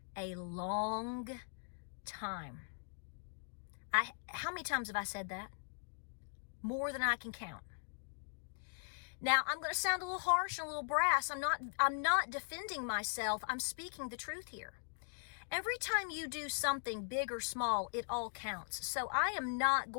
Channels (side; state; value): right; silent; digital silence